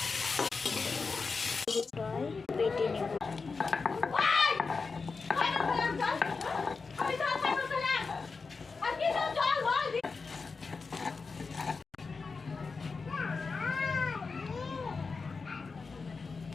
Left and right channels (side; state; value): right; quieter; 4.5 dB